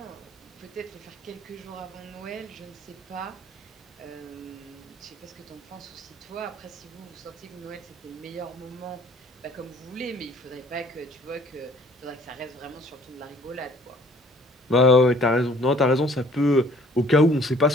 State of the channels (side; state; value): both; normal; correlation 0.56